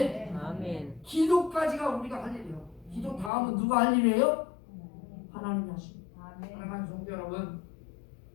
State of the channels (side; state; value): right; drops out; at 3.3 s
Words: 아멘. 기도까지가 우리가 할 일이에요. 기도 다음은 누가 할 일이에요? 하나님이 하십니다. 사랑하는 성도 여러분,